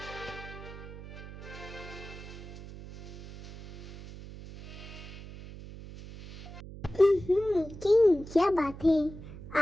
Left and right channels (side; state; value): right; noise; hum, 13 dB below the sound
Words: किंग, क्या बात है,